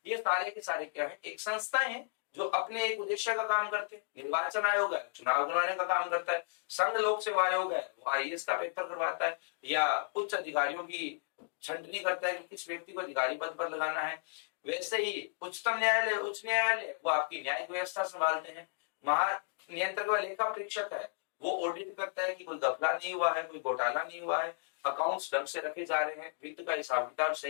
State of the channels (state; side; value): silent; right; digital silence